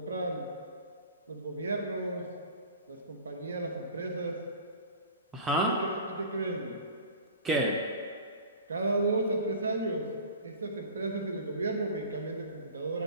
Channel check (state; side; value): inverted; both; correlation -0.41